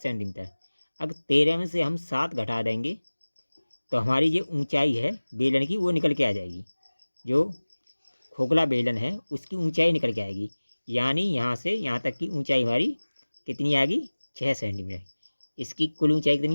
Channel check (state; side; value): inverted; both; correlation -1.00